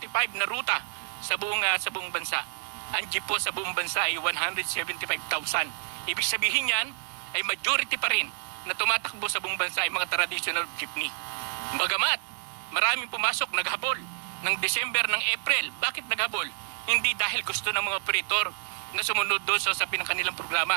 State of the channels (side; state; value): left; silent; digital silence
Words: na ruta sa buong bansa. Ang jeep po sa buong bansa ay 175,000. Ibig sabihin yan ay majority pa rin na tumatakbo sa buong bansa ay mga traditional jeepney. Bagamat maraming pumasok, naghabol ng December, ng April. Bakit naghabol? Hindi dahil gusto ng mga operator na sumunod doon sa usapin ng kanilang